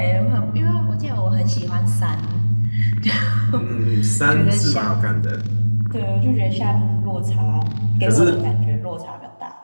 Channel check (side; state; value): both; inverted; correlation -1.00